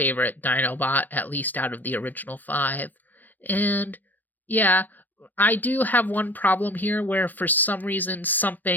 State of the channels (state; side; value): late; right; 0.085 ms